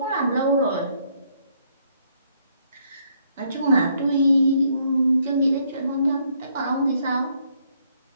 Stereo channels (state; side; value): inverted; both; correlation -0.70